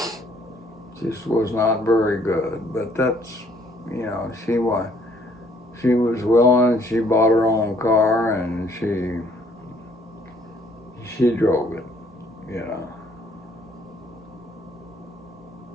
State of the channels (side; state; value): both; normal; correlation 0.63